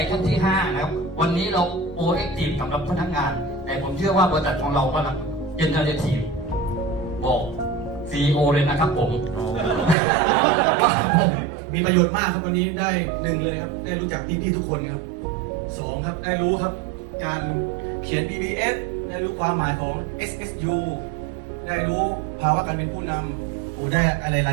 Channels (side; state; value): left; drops out; at 10.0 s